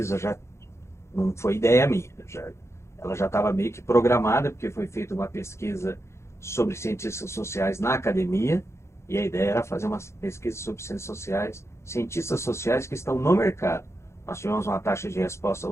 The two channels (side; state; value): right; late; 0.13 ms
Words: já não foi ideia minha, ela já estava meio que programada, porque foi feita uma pesquisa sobre cientistas sociais na academia, e a ideia era fazer uma pesquisa sobre cientistas sociais que estão no mercado. Nós tivemos uma taxa de resposta